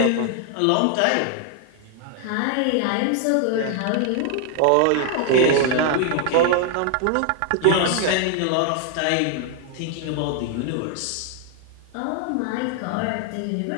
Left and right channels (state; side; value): different; both; correlation 0.00